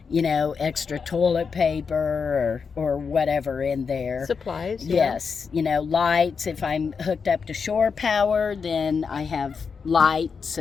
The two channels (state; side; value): quieter; right; 5.7 dB